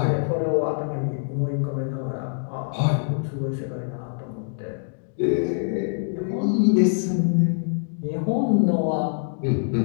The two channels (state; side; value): silent; right; digital silence